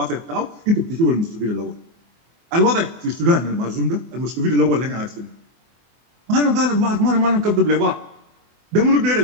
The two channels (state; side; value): late; left; 24 ms